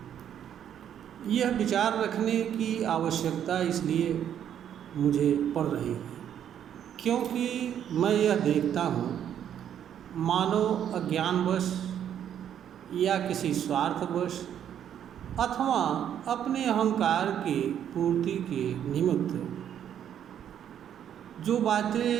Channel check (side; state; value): left; quieter; 9.6 dB